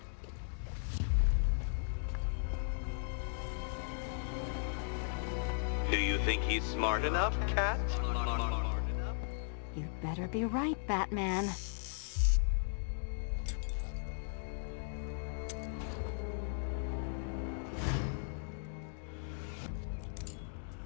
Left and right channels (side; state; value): right; silent; digital silence